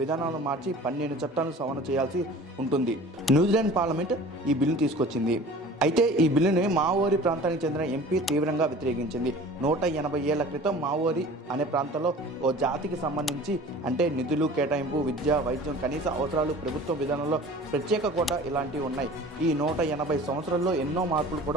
విధానాలను మార్చి 12 చట్టాలను సవరణ చేయాల్సి ఉంటుంది. న్యూజిలాండ్ పార్లమెంట్ ఈ బిల్లును తీసుకొచ్చింది. అయితే ఈ బిల్లుని మావోరి ప్రాంతానికి చెందిన ఎంపీ తీవ్రంగా వ్యతిరేకించింది. 180 ఏళ్ల క్రితం మావోరి అనే ప్రాంతంలో ఓ జాతికి సంబంధించి అంటే నిధులు కేటాయింపు, విద్య, వైద్యం, కనీస అవసరాలు, ప్రభుత్వ విధానంలో ప్రత్యేక కోటా ఇలాంటివి ఉన్నాయి. ఈ 180 సంవత్సరాల్లో ఎన్నో మార్పులు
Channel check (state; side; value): normal; both; correlation 0.43